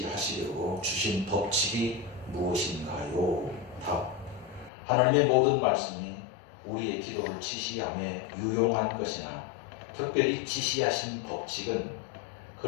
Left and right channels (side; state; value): right; drops out; at 4.7 s